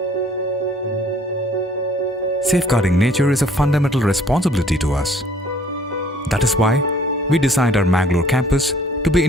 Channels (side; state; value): both; normal; correlation 0.57